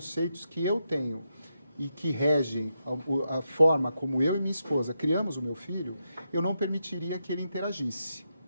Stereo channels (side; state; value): both; inverted; correlation -0.85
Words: que eu tenho e que regem a forma como eu e minha esposa criamos o meu filho, eu não permitiria que ele interagisse.